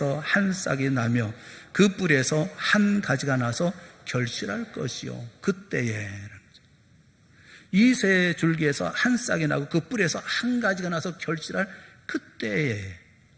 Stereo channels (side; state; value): both; identical; correlation 1.00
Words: 한 싹이 나며 그 뿌리에서 한 가지가 나서 결실할 것이요. 그때에. 이새의 줄기에서 한 싹이 나고 그 뿌리에서 한 가지가 나서 결실할 그때에.